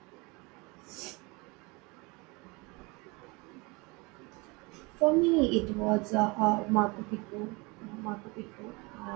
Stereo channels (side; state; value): left; quieter; 26.6 dB